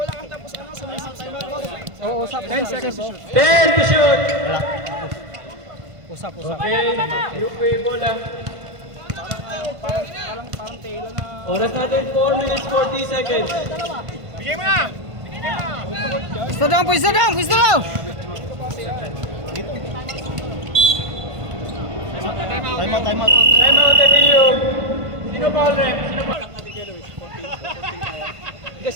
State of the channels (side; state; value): left; late; 1.5 ms